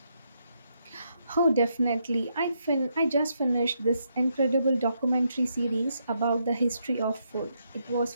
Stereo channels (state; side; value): inverted; both; correlation -0.78